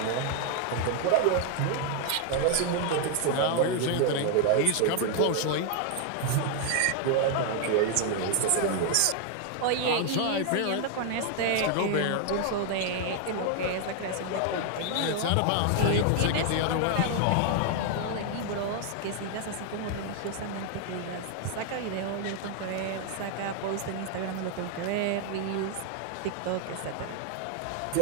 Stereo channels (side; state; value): both; different; correlation 0.00